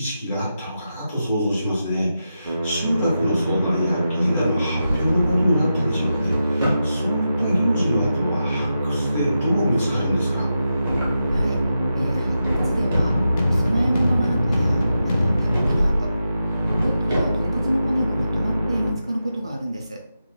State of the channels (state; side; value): inverted; both; correlation -0.89